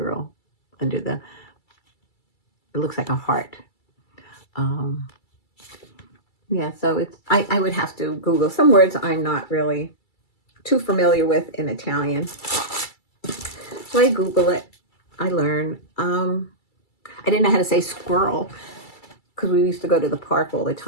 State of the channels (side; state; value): right; late; 2.3 ms